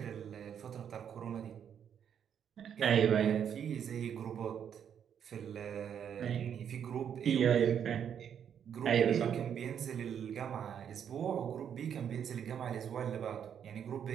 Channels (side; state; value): left; quieter; 8.5 dB